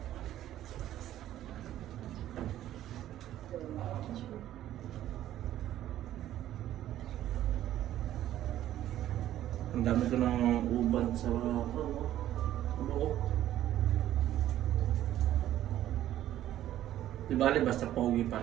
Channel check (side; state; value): left; quieter; 12.7 dB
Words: Ang dami ko ng uban sa buhok. Di ba, basta pogi pa